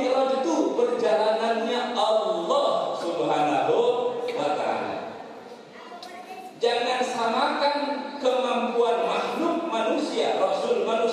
itu perjalanannya Allah Subhanahu wa ta'ala. Jangan samakan kemampuan makhluk manusia, Rasul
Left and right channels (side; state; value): both; identical; correlation 1.00